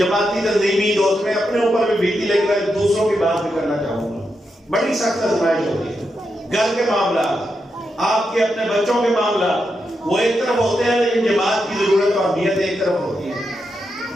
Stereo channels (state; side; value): normal; both; correlation 0.85